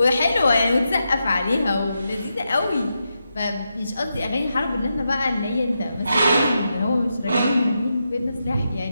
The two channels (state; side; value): inverted; both; correlation -0.86